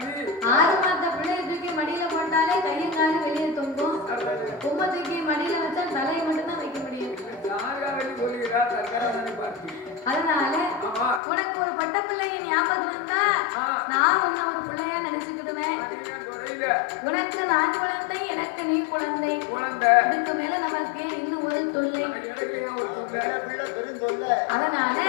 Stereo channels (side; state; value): right; drops out; at 11.2 s